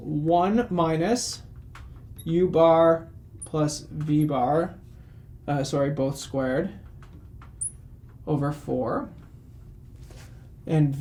minus u bar plus v bar, both squared, over 4. And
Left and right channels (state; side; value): identical; both; correlation 1.00